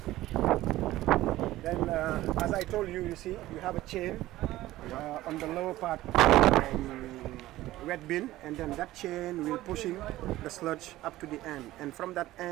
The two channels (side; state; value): left; quieter; 16.1 dB